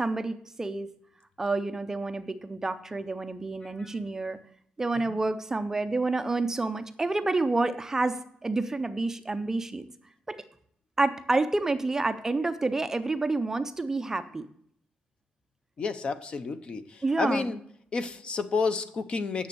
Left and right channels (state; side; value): normal; both; correlation 0.90